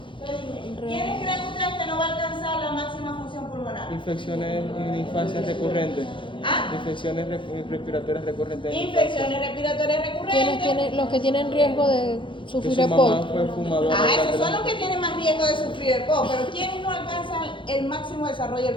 ¿Quiénes creen ustedes que no va a alcanzar la máxima función pulmonar? Infecciones en infancia recurrentes. ¿Ah? Infecciones respiratorias recurrentes. Infecciones respiratorias recurrentes. Los que tienen riesgo de Que sufrir su mamá EPOC. fue fumadora. Esos son los que tienen más riesgo de sufrir el EPOC, pero ¿quiénes no alcanzan el máximo desarrollo del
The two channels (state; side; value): late; right; 0.24 ms